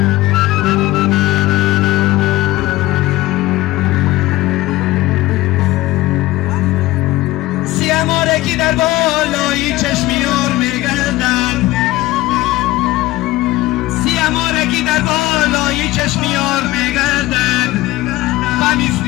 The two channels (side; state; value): right; quieter; 17.8 dB